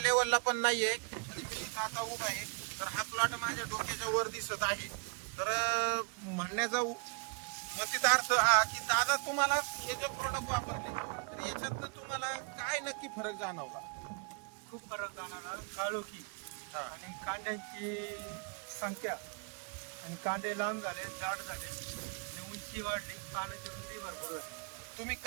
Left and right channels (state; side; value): quieter; left; 34.5 dB